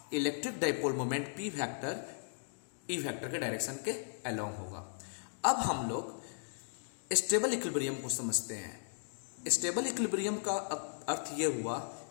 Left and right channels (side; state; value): right; silent; digital silence